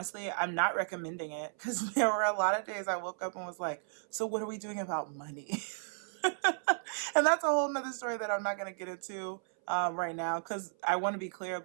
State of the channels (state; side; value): silent; left; 55 dB below the other